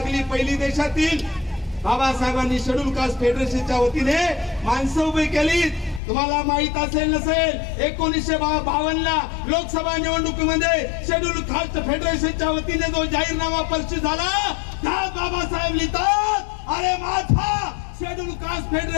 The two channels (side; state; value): right; drops out; at 6.0 s